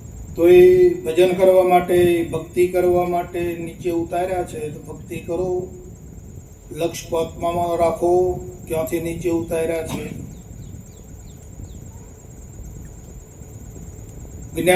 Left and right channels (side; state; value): both; identical; correlation 1.00